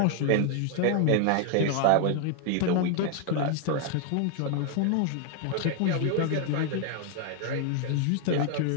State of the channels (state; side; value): different; both; correlation 0.00